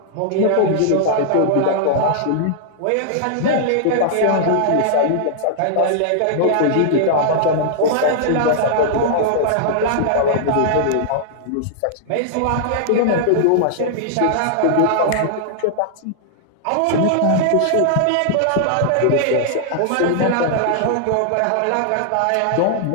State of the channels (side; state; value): both; different; correlation -0.01